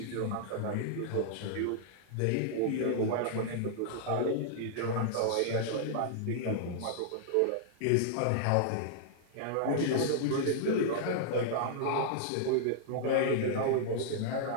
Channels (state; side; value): different; both; correlation -0.01